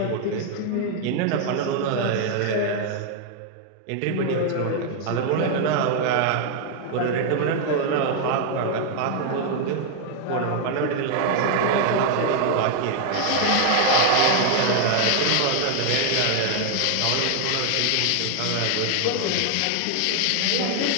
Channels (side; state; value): both; different; correlation 0.00